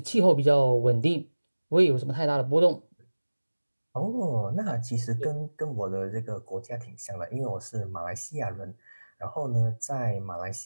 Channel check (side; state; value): both; inverted; correlation -1.00